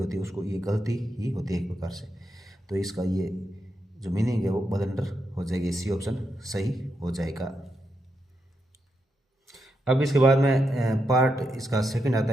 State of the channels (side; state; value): both; normal; correlation 0.84